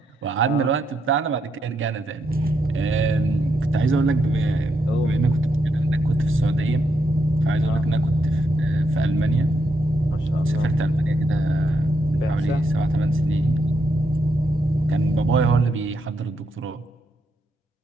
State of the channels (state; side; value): normal; both; correlation 0.79